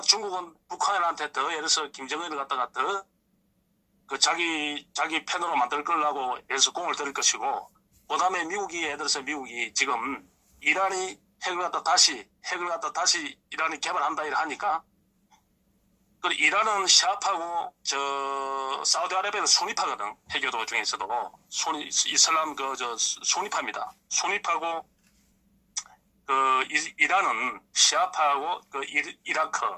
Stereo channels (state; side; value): identical; both; correlation 1.00